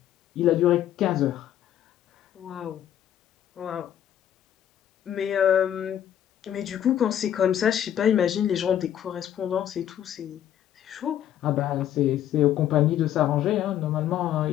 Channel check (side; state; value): right; quieter; 10.7 dB